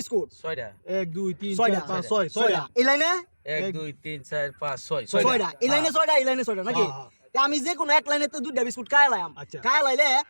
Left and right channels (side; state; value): both; inverted; correlation -1.00